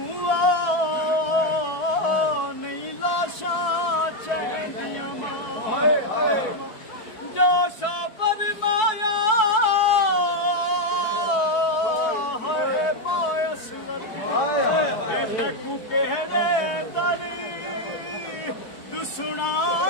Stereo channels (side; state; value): right; late; 4.6 ms